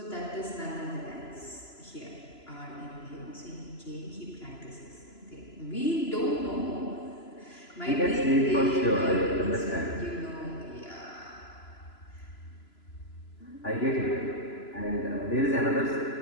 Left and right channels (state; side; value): late; right; 3.0 ms